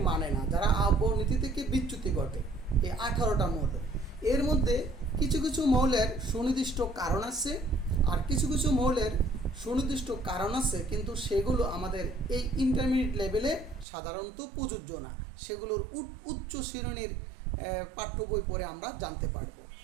মানে না, যারা আফবাউ নীতি থেকে বিচ্যুতি ঘটে। এই 18টা মৌল, এর মধ্যে কিছু কিছু মৌলের সুনির্দিষ্ট কারণ আছে, আর কিছু কিছু মৌলের সুনির্দিষ্ট কারণ আছে কিন্তু সেগুলো আমাদের এই ইন্টারমিডিয়েট লেভেলে সাধারণত প্রযোজ্য না, সেগুলোর উচ্চ শ্রেণীর পাঠ্য বই পড়ে আমরা জানতে পারবো।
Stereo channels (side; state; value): left; drops out; at 13.9 s